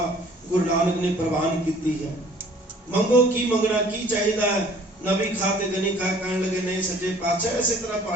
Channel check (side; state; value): both; normal; correlation 0.54